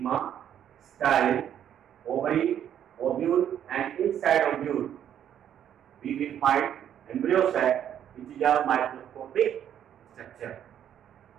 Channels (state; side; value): quieter; left; 9.8 dB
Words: style, ovary, ovule, and inside ovule we will find embryo sac, which is a microscopic structure.